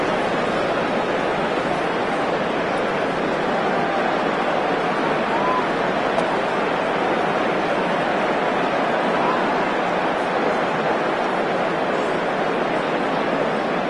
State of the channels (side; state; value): both; identical; correlation 1.00